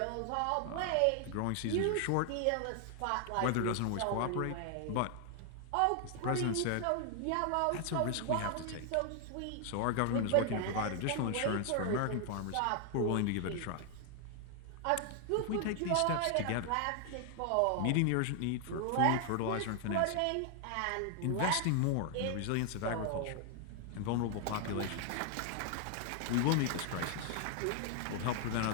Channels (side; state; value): both; different; correlation 0.00